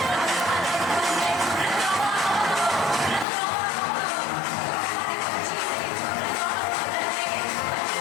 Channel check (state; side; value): drops out; right; at 3.2 s